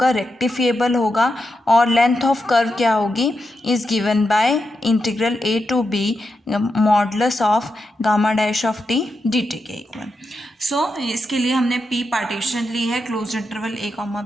रेक्टिफिएबल होगा, और लेंथ ऑफ कर्व क्या होगी? Is given by integral A to b modulus of gamma dash of T D T के इक्वल। सो इसके लिए हमने P पार्टीशन ली है क्लोज इंटरवल ए कॉमा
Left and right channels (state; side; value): normal; both; correlation 0.87